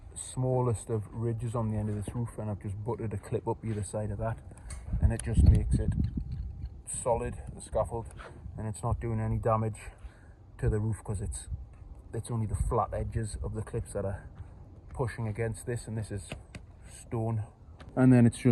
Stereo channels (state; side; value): identical; both; correlation 1.00